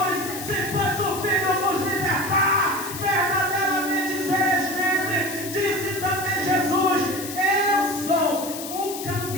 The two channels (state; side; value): noise; left; hiss, 9 dB below the sound